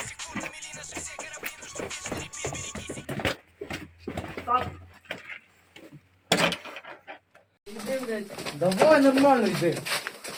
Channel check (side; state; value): both; identical; correlation 1.00